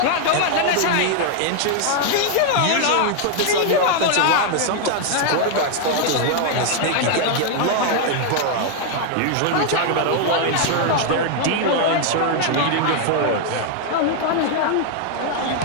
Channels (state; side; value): different; both; correlation 0.00